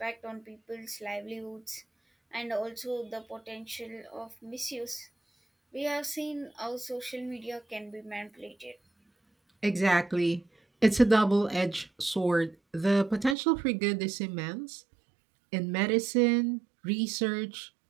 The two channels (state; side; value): drops out; left; at 13.4 s